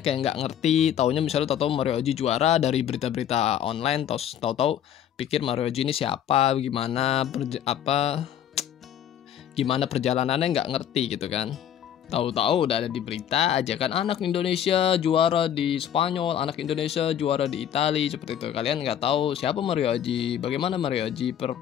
yang nggak ngerti, taunya misalnya tahu Mario Aji juara dari berita-berita online, tahu-tahu pikir Mario Aji ini siapa, gimana perjalanannya, nggak ngerti gitu kan. Tahu-tahu udah ada di berita aja kan, anak Indonesia juara di Spanyol, anak Indonesia juara di Italia, seperti itu. Kalian nggak tahu siapa Mario Aji, bagaimana Mario Aji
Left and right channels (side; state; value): right; quieter; 9.9 dB